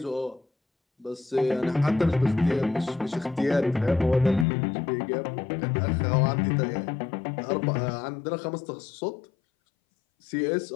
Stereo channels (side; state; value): right; drops out; at 4.5 s